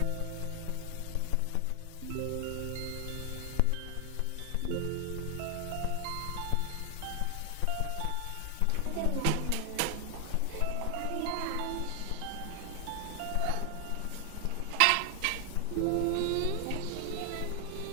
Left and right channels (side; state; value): both; different; correlation 0.00